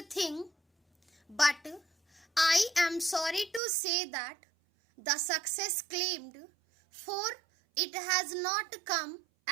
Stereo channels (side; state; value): left; drops out; at 3.6 s